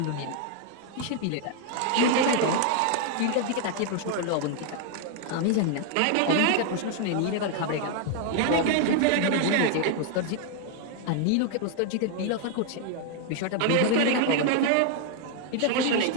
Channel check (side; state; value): both; different; correlation 0.00